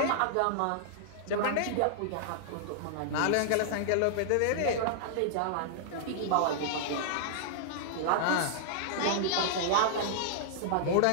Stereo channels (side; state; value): both; different; correlation -0.01